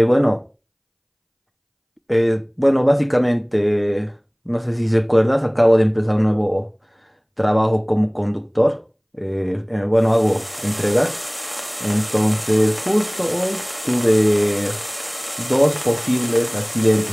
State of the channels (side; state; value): both; identical; correlation 1.00